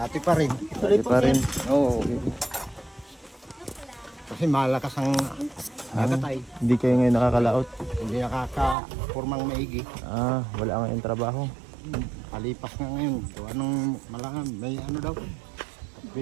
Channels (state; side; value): drops out; left; at 8.8 s